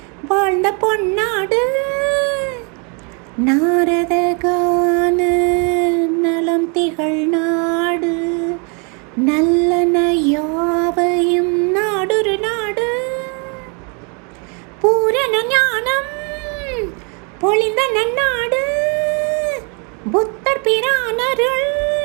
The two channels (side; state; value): left; quieter; 35.5 dB